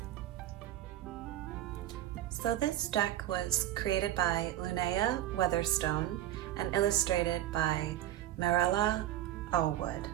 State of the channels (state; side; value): quieter; left; 13.1 dB